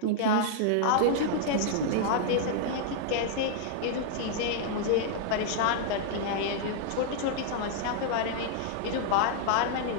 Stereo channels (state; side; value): different; both; correlation -0.01